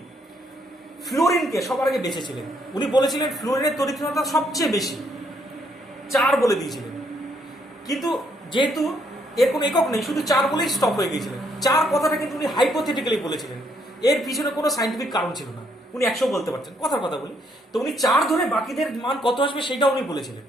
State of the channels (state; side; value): normal; both; correlation 0.71